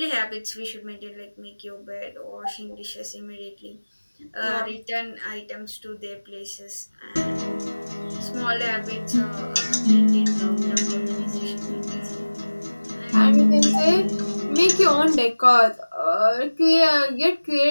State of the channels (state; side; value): inverted; both; correlation -1.00